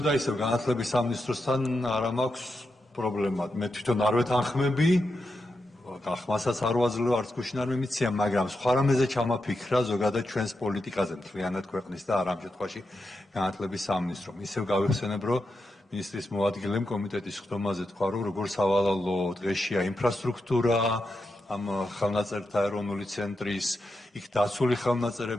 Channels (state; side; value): normal; both; correlation 0.87